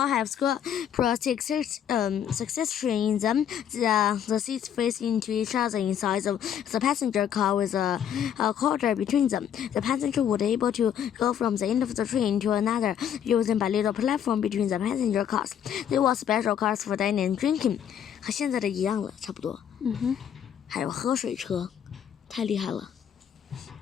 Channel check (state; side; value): quieter; right; 9.2 dB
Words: succession in them. The seats faced into each other inside the passenger car with a corridor between them. The passenger would be able to go from the end of the train to another using a little platform between the passenger cars. There were special cars for dining and drinking. 和现在的一样了，差不多。还有喝水车，太厉害了。